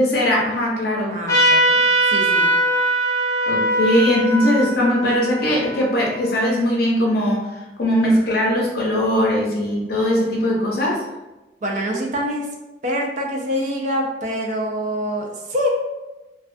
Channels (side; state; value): both; normal; correlation 0.33